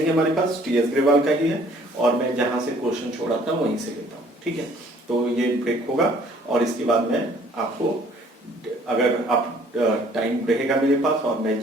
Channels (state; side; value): normal; both; correlation 0.58